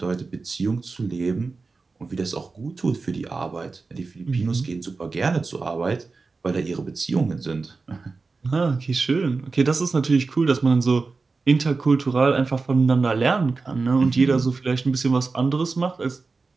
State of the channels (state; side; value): quieter; left; 4.1 dB